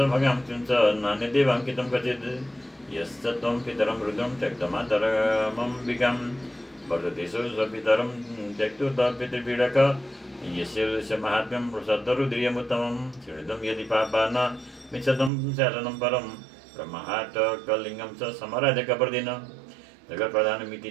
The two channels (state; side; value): drops out; left; at 15.3 s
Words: भगांशं च नान्यदेवाङ्कितं क्वचित् यश्च त्वं पितरं रुद्रं त्यक्तमातरमम्बिकां वर्धतेषु स्वपितरं त्यक्तुत पितृपीडक यस्य महात्म्यं सत्तरुद्रियमुत्तमं शृणुतं यदि पापा न मिच्छतं शासनं परं ब्रह्माटकलिङ्गं च समराध्य कपर्दिन जगत्प्रधानमिति